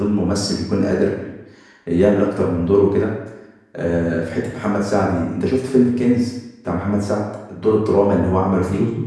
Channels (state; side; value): identical; both; correlation 1.00